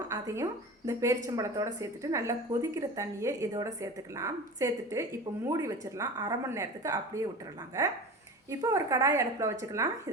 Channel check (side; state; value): both; normal; correlation 0.33